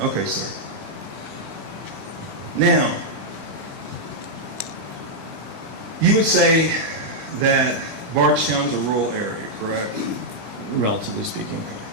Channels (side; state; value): left; late; 20 ms